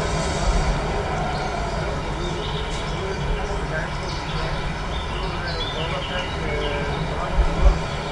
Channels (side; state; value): both; identical; correlation 1.00